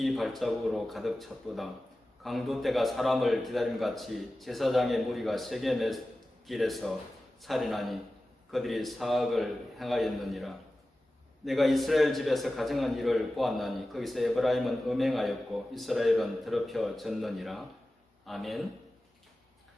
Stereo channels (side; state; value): both; normal; correlation 0.95